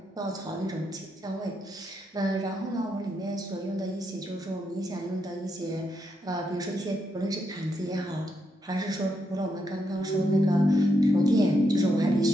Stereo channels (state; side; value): normal; both; correlation 0.80